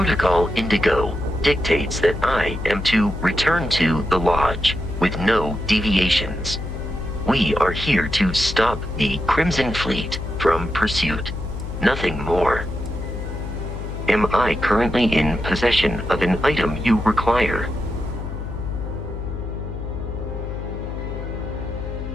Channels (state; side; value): noise; left; hum, 7 dB below the sound